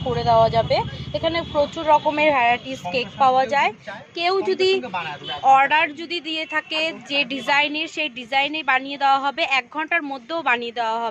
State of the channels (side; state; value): both; identical; correlation 1.00